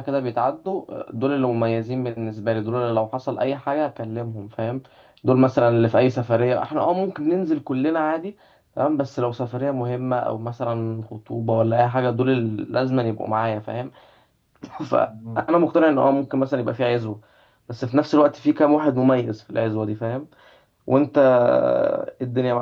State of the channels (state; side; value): identical; both; correlation 1.00